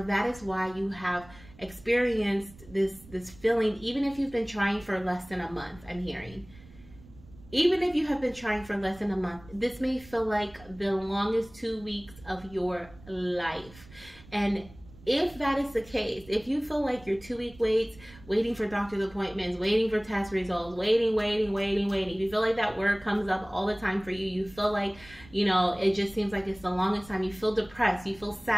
that is why you have experienced this feeling, even if you've been trying for less than a month. I'm hearing, even if you have been trying for less than a month, this may feel like the longest 2 weeks of your life. And if that is the case, if you feel like your 2 week waits, waiting for doctor's appointments, waiting for test results, waiting, if you feel like that word comes up all the time for you, you feel like, you know, it just seems like it's the longest time, you feel depressed, you feel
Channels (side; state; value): right; noise; rumble, 22 dB below the sound